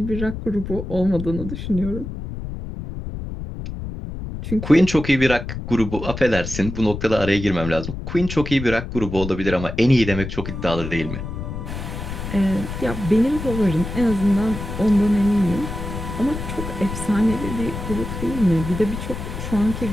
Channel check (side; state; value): left; noise; rumble, 7 dB below the sound